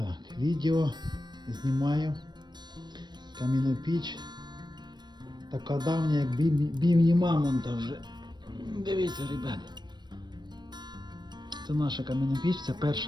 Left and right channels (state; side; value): late; left; 0.21 ms